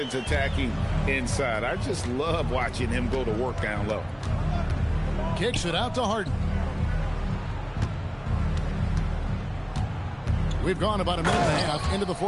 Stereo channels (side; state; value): both; identical; correlation 1.00